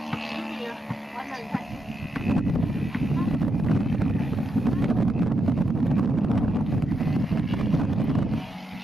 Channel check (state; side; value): normal; both; correlation 0.83